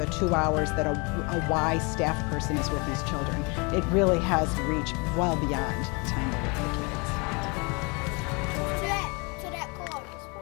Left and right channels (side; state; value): right; quieter; 30.2 dB